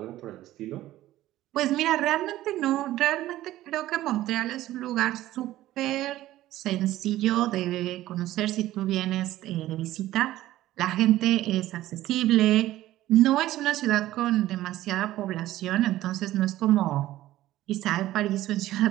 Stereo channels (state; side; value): quieter; left; 15.0 dB